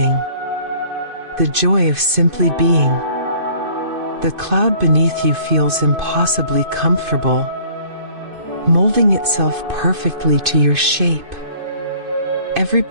the joy of simply being. The cloud beneath you feels impossibly comfortable, molding itself perfectly to your shape. Every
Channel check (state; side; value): late; left; 2.5 ms